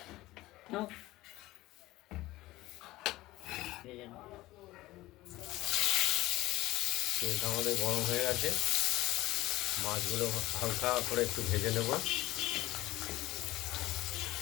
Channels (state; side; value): quieter; right; 18.0 dB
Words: তেলটা আমাদের গরম হয়ে গেছে, মাছগুলো হালকা করে একটু ভেজে নেব।